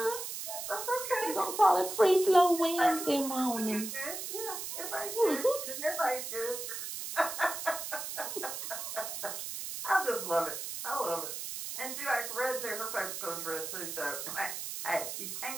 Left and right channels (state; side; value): noise; right; hiss, 6 dB below the sound